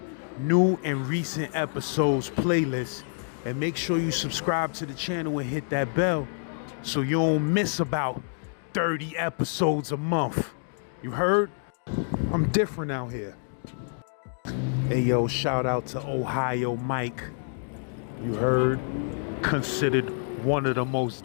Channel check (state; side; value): silent; right; digital silence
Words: new and recent episodes playlist. And make sure you subscribe to the channel and hit that bell so you don't miss about 30 episodes a month. You heard? I'm different out here. Hey yo, shout out to Ohio Mike. You heard? Considered one of the